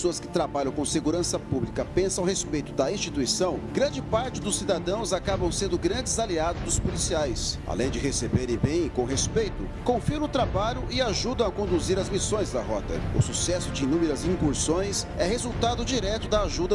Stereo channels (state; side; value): identical; both; correlation 1.00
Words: que trabalham com segurança pública pensam a respeito da instituição, grande parte dos cidadãos acabam sendo grandes aliados dos policiais. Além de receberem bem e com respeito, confiam no trabalho e ajudam a conduzir as missões da rota. O sucesso de inúmeras incursões é resultado direto da